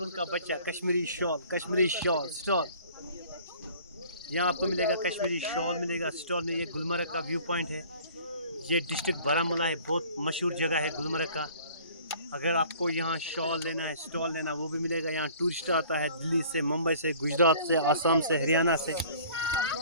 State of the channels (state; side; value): inverted; both; correlation -0.50